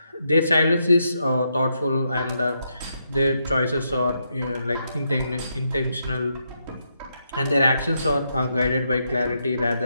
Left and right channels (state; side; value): inverted; both; correlation -0.81